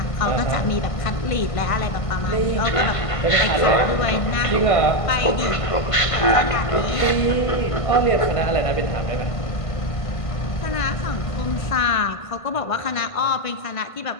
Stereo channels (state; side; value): late; right; 1.5 ms